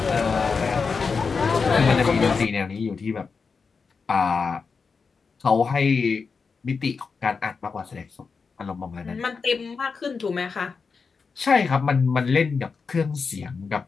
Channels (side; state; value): right; quieter; 5.1 dB